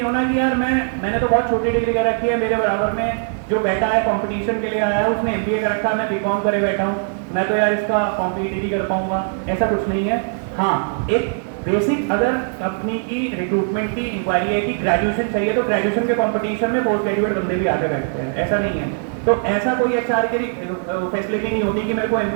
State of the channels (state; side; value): silent; left; digital silence